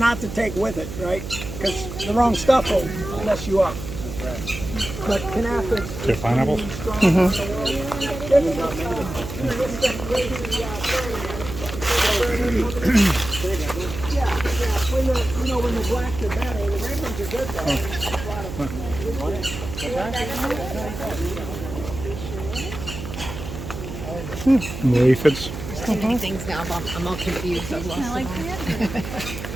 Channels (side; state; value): right; noise; hum, 9 dB below the sound